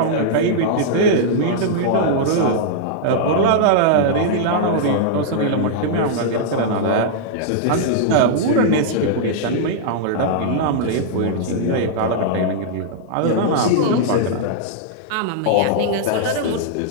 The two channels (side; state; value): both; different; correlation -0.02